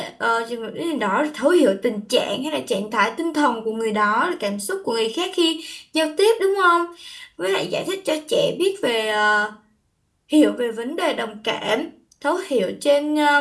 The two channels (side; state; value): both; identical; correlation 1.00